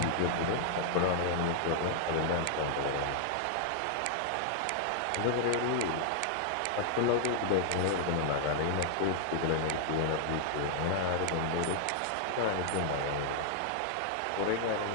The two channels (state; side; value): different; both; correlation -0.01